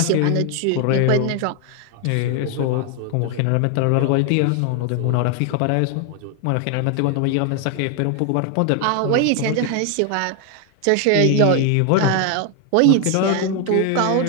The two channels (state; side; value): different; both; correlation 0.01